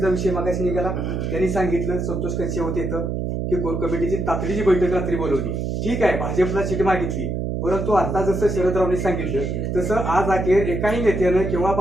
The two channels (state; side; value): noise; right; hum, 2 dB below the sound